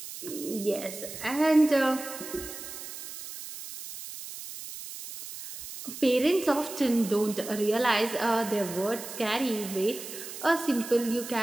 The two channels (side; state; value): right; noise; hiss, 11 dB below the sound